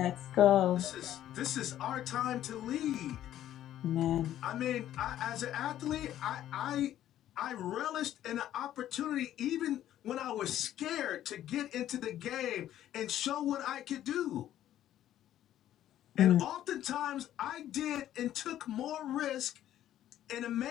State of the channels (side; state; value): right; quieter; 12.1 dB